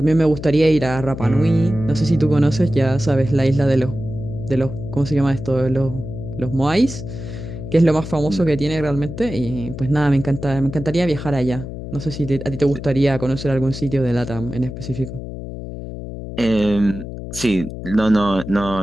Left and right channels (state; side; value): noise; left; hum, 9 dB below the sound